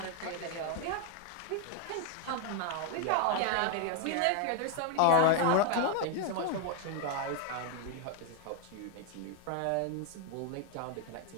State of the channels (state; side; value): different; both; correlation 0.01